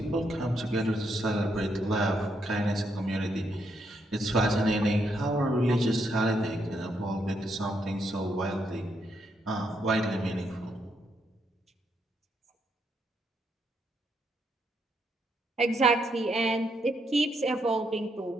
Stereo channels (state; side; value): normal; both; correlation 0.77